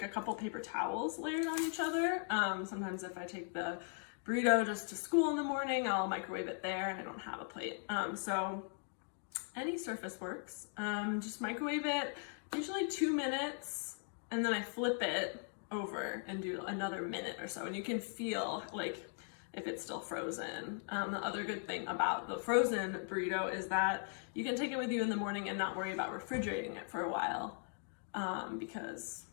a couple paper towels layered on each other. Sometimes if I take the burrito just to school in the morning, I'll microwave it there and I don't have a plate. So any surface works. Just microwave it, usually 2 minutes, and then I flip it over and do another minute or so, and you can feel like if it's still frozen. The other good thing about the frozen burrito is that you can take it with you in the morning and not worry about refrigerating it for a while, because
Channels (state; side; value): silent; right; 52 dB below the other